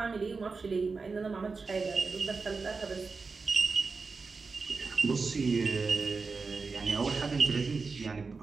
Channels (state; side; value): quieter; left; 4.4 dB